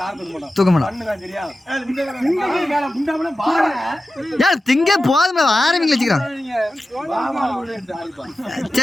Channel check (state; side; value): normal; both; correlation 0.94